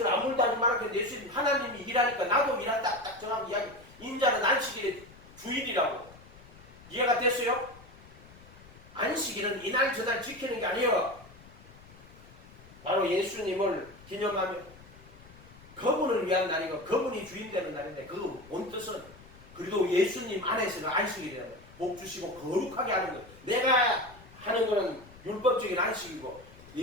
아무도 하지 말았는데 예수님 하나님이 일하니까 나도 일한다. 딱 정확히 이야기. 인자는 안식일의 주일이라고. 이해가 됐어요? 안식일은 이날 저날 지키는 게 아니에요. 바로 예수님을 기념하며 그분을 위한 날이고 그분이 주인 되는 날인데 그 본 뜻은 그래도 예수님 안에서는 안식일이라는 거예요. 복 주시고 거룩하게 하는 것. 내가 하는 거는 율법적인 안식이고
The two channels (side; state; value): left; noise; rumble, 21 dB below the sound